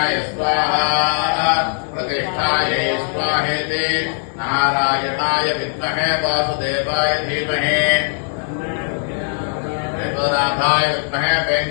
स्वाहा प्रतिष्ठायै स्वाहेति नारायणाय विद्महे वासुदेवाय धीमहि वेदनाथाय विद्महे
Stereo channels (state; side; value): silent; right; 66 dB below the other